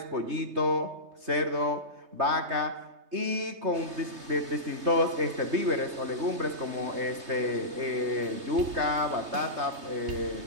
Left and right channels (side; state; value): left; late; 3.2 ms